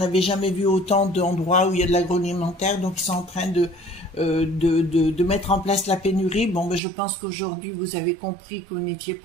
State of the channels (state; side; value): drops out; left; at 6.8 s